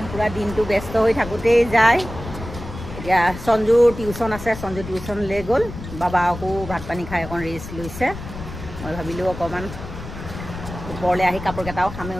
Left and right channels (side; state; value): left; noise; rumble, 11 dB below the sound